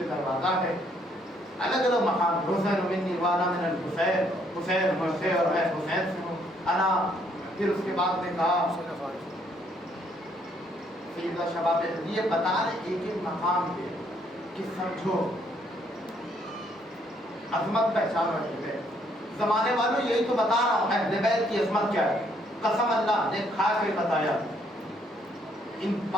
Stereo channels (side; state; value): both; normal; correlation 0.69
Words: دروازہ ہے. الگ الگ مقام. حسین منی وانا من الحسین. حسین مجھ سے اور میں حسین سے ہوں. انا. پھر اس کے بعد نے کہا سیدہ شباب یہ بتا رہے ایک ایک مقام پہ کہ سمجھو عظمت پہچانو اہل بیت. زمانے والوں یہی تو بتا رہا ہوں اہل بیت کی عظمت کیا ہے. قسم اللہ نے کھا کے بتایا ان